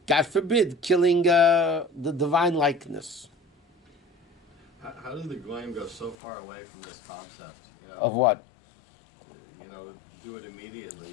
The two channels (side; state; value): right; drops out; at 6.2 s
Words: God forbid, killing the divine likeness. How did the Goyim go so far away from this concept? Of what? Do it